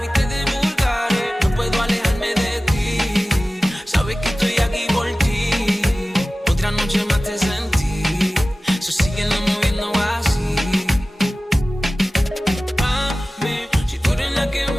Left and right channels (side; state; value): both; normal; correlation 0.96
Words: viste de vulgares. No puedo alejarme de ti, sabes que estoy aquí por ti. Otra noche más te sentí, so síguelo moviendo así. Mami, si tú eres la que